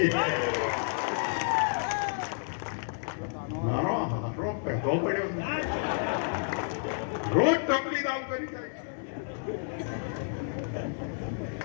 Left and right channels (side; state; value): right; silent; 57 dB below the other